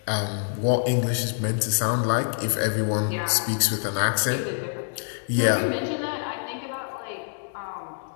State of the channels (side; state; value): right; silent; digital silence